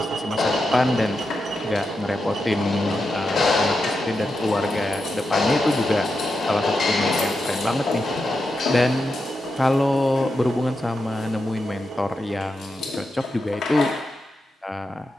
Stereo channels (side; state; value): both; normal; correlation 0.87